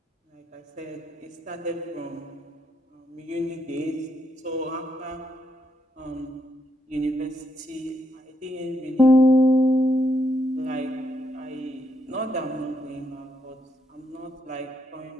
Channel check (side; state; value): both; normal; correlation 0.77